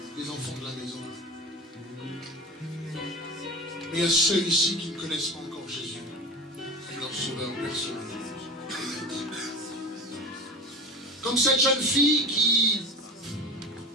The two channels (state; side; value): normal; both; correlation 0.31